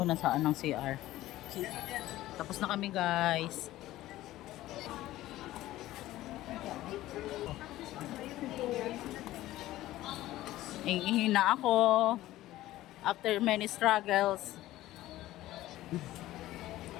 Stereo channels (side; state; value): right; quieter; 15.6 dB